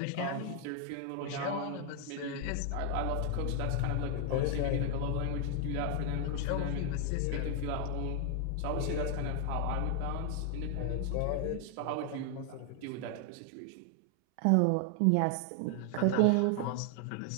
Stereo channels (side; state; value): both; different; correlation 0.00